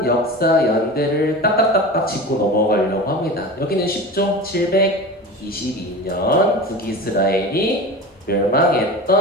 역사 연대를 딱딱딱딱 짚고 넘어가려고 합니다. 여기는 쉽죠? 722년 북이스라엘이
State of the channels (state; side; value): normal; both; correlation 0.31